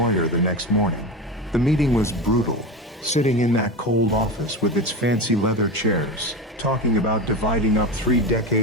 the next morning. The meeting was brutal, sitting in that cold office with its fancy leather chairs, talking about dividing up 3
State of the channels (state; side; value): normal; both; correlation 0.23